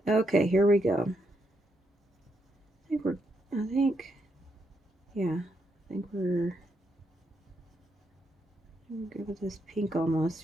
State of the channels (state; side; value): normal; both; correlation 0.79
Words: Okay, here we go. I think we're good with this pink almost